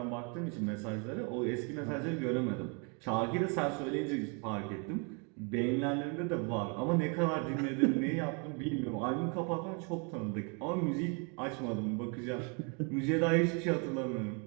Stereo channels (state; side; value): quieter; left; 35.5 dB